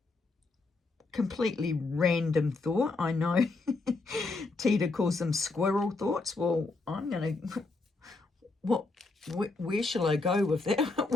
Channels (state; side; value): quieter; right; 3.5 dB